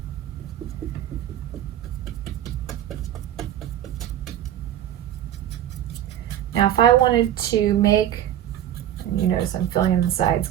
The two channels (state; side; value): quieter; left; 11.5 dB